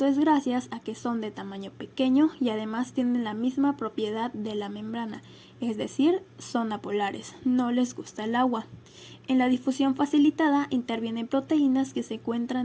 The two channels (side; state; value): both; identical; correlation 1.00